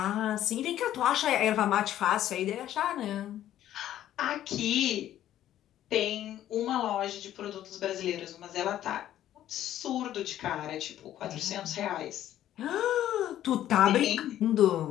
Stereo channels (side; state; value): right; quieter; 12.2 dB